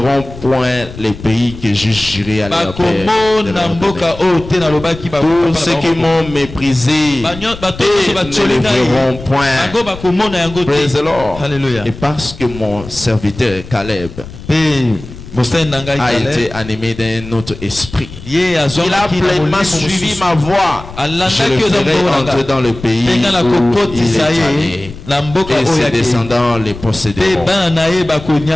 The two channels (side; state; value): left; noise; rumble, 14 dB below the sound